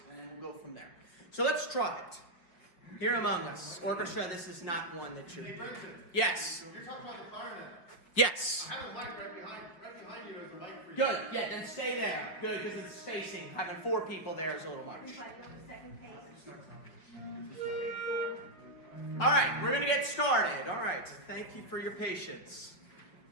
and then we'll go from there. So let's try it. Here Among Us. Orchestra, this is not one that should... Hey, Brenten. Yes. You're talking about the clarinet. Yes. I have a mic right behind you. There's a mic for you. Good. Yeah, then stay there. Good, because it's spacing. Having 4 people there is a little much. All right, we're going to get started. All right. Thank you for your patience.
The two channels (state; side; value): late; right; 5.4 ms